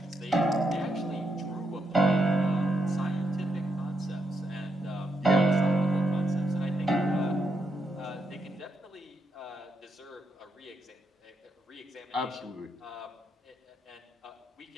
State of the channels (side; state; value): both; normal; correlation 0.81